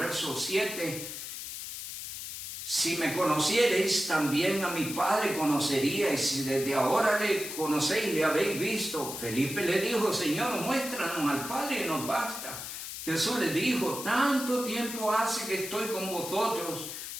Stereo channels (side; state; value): left; noise; hiss, 8 dB below the sound